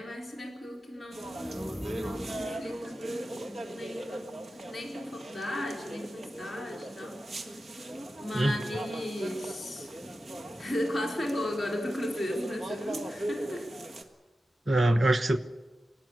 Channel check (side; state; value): both; normal; correlation 0.92